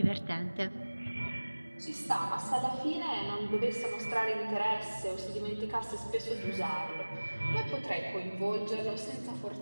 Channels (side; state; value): both; inverted; correlation -1.00